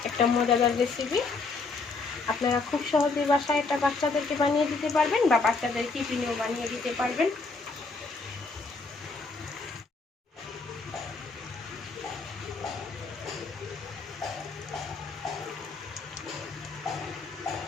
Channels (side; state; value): right; quieter; 4.1 dB